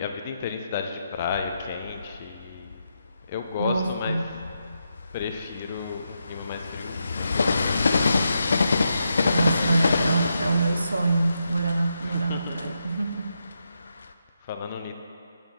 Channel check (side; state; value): both; inverted; correlation -0.83